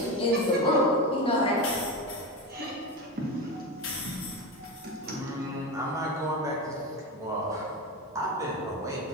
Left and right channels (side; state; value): both; normal; correlation 0.20